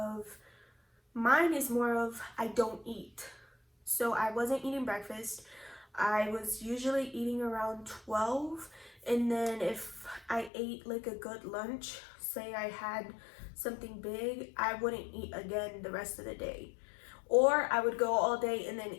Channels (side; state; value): right; drops out; at 10.5 s